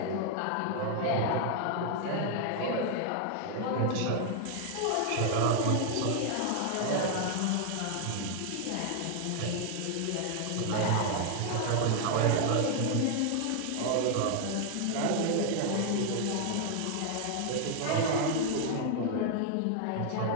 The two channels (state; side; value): different; both; correlation 0.00